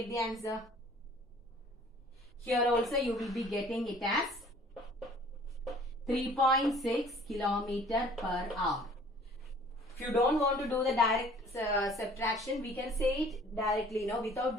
the answer. Here also you will be getting it as 3.6 kilometer per hour. If you don't want to do the direct subtraction, we can say it directly, without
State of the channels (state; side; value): normal; both; correlation 0.52